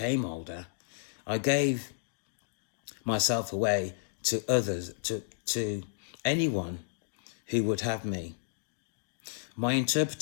older, I gave myself away to others, to anyone who would have me. My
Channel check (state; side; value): silent; right; digital silence